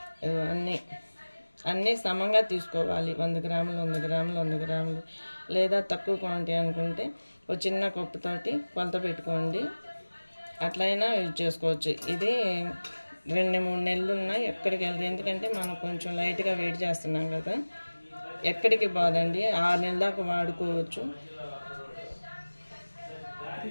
అన్నీ సమంగా తీసుకోవాలి. 100 గ్రాములు 100 గ్రాములు 100 గ్రాములు, లేదా తక్కువ క్వాంటిటీ అనుకుంటే ఒక చిన్న కప్పుతోటి కొలత పెట్టుకోండి, అట్లయినా యూజ్ చేసుకోవచ్చు. ఇది 2-3 నెలలు ఉన్నాయి, ఎక్కడికి వెళ్తుంది. ఎందుకంటే మనం కొంచెం లైట్గా వెయిట్ చేస్తున్నాం కదా, ఎక్కడికి బాదండి. 6 నెలల దాకా వాడుకోవచ్చు.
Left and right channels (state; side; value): inverted; both; correlation -1.00